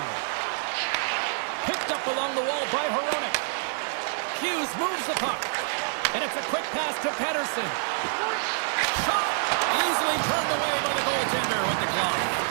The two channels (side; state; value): left; silent; 58 dB below the other